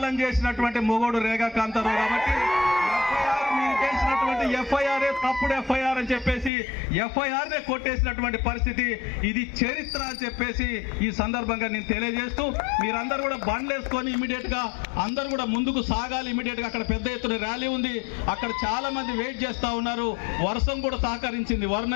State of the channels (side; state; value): right; drops out; at 6.5 s